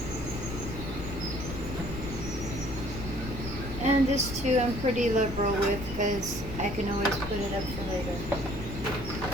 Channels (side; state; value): left; noise; rumble, 7 dB below the sound